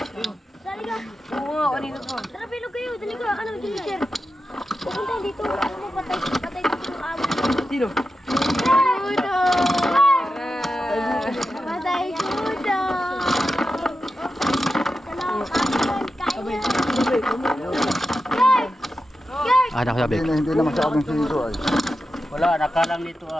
Sali ka! Oo nga, kanina pa. Tara, bilog kayo! Dali ka! Ano, Ginger? Pupunta dito! Ano mo, patay dito yung amo. Sino? Kudo! Patay kudo! Kain na! Ah, nakasabi. Hindi na masyadong siro ay. Wala, nakalang dito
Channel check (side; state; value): both; normal; correlation 0.90